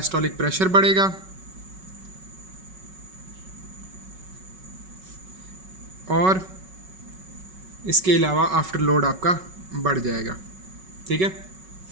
प्रेशर बढ़ेगा, और इसके अलावा आफ्टर लोड आपका बढ़ जाएगा, ठीक है।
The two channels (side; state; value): left; late; 5.3 ms